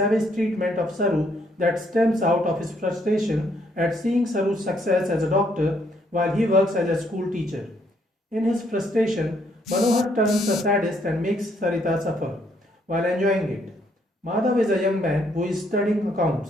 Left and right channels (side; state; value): both; normal; correlation 0.70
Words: treatment of Saru that stems out of his frustration at seeing Saru's success as a doctor while he works as a school teacher. In his frustration, Manohar turns a sadist and makes Sarita suffer while enjoying it. Madhav is a young man who is studying